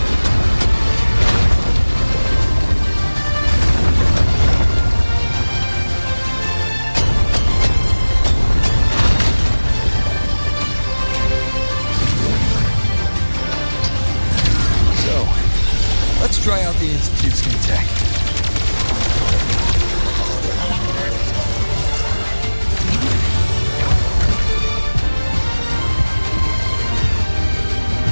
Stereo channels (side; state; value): both; inverted; correlation -1.00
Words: Let's try out the Institute's new tech.